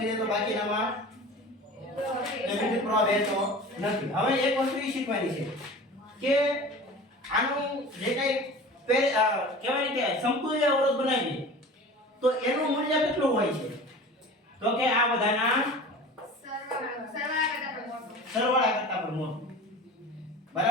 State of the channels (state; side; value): normal; both; correlation 0.38